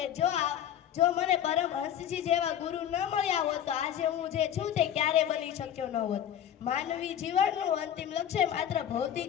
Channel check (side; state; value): right; quieter; 10.0 dB